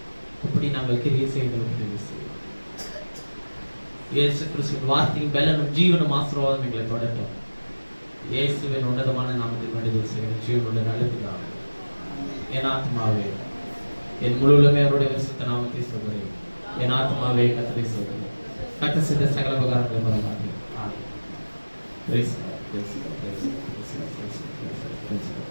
அப்படி நாங்கள் கிரியை செய்ய எங்களுக்கு உதவி செய்யும். இயேசு கிறிஸ்துவின் வார்த்தையும் பலனும் ஜீவனும் ஆசீர்வாதம் எங்களை தொடரட்டும். இயேசுவின் உன்னதமான நாமத்தில் வேண்டுதல் செய்கிறேன் ஜீவனுள்ள நல்லதுதான். என் ஆத்மாவே என் முழுவதுமே அவருடைய பரிசுத்த நாமத்தை சொல்கிறேன். என் ஆத்மாவே கர்த்தரை சொல்கிறேன். கர்த்தர் செய்த சகல உபகாரங்களை மறவாதே.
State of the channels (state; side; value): inverted; both; correlation -1.00